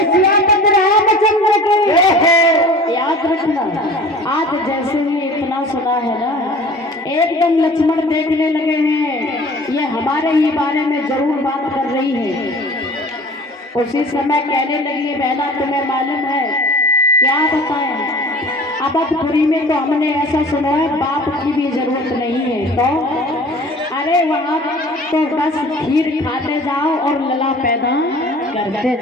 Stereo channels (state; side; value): normal; both; correlation 0.44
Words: सियापत रामचंद्र की। याद रखना, आज जैसे ही इतना सुना है ना, एकदम लक्ष्मण देखने लगे हैं, ये हमारे ही बारे में जरूर बात कर रही है। उसी समय कहने लगी, बहना तुम्हें मालूम है क्या बताएं, अवधपुरी में तो हमने ऐसा सुना है बाप की भी जरूरत नहीं है। तो अरे वहाँ तो बस खीर खाते जाओ और लला पैदा करते